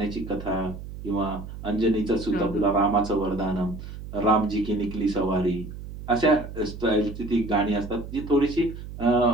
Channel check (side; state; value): right; noise; hum, 11 dB below the sound